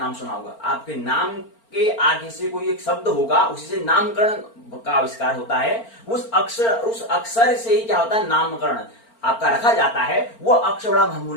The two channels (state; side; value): late; right; 4.4 ms